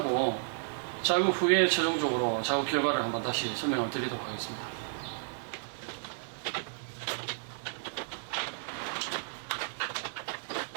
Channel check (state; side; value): silent; left; digital silence